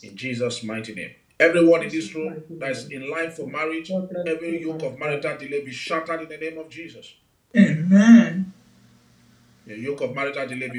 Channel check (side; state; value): both; identical; correlation 1.00